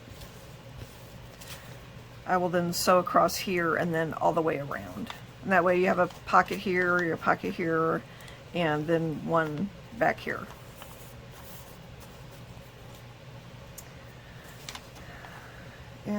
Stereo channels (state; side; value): identical; both; correlation 1.00